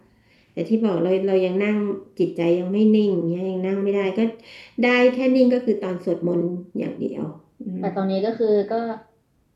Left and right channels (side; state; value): both; identical; correlation 1.00